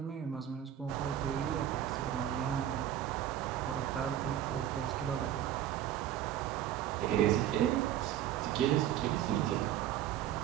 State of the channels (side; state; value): left; quieter; 11.2 dB